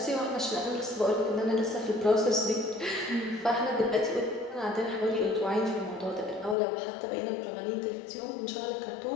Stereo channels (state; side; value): drops out; right; at 6.6 s